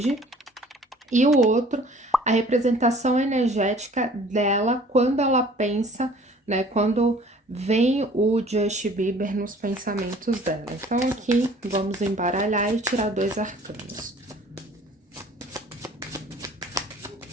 e o outro, a representação energética dela quando ela pensa, né? Quando vem o Justin Bieber nos pensamentos dela. Então, aqui vamos embaralhar e tirar 2 arcanos.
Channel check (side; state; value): both; normal; correlation 0.51